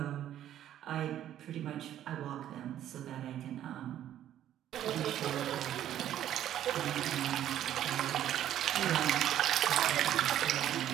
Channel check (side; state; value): left; quieter; 11.5 dB